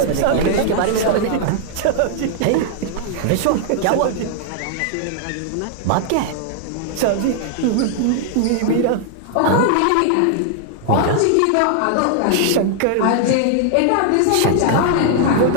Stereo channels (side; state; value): both; different; correlation -0.01